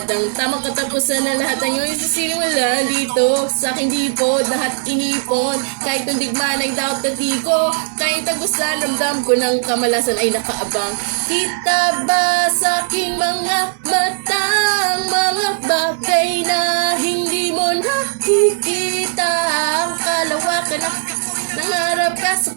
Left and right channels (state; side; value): silent; left; 67 dB below the other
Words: ang tamang katapusan na lahat ng iyong isasinimulan dito sa aking dipod, lahat inipon. Kahit nung digmaan ay daot na di ko kahit tagusan, ramdam ko ng kamalasan ay nakaabang. Kita ba sa aking mga matang mga bagay na hindi mo nakikita? Ang kalawakan na nangarap ka sa